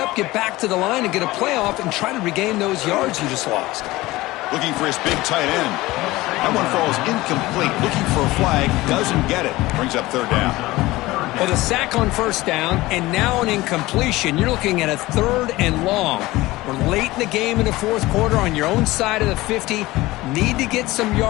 get back to the line, and get a playoff and try to regain those yards you just lost. Looking for his big tight end. That one falls incomplete. Looking for a flag, doesn't get it. Brings up 3rd down. Well, the sack on 1st down, and now an incompletion. You're looking at a 3rd and long. We're late in the game in the 4th quarter on your own side of the 50. Need to get some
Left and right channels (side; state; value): right; quieter; 19.1 dB